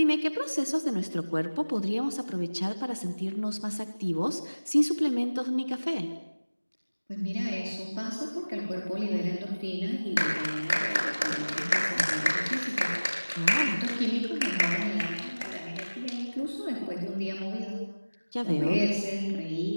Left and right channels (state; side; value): inverted; both; correlation -1.00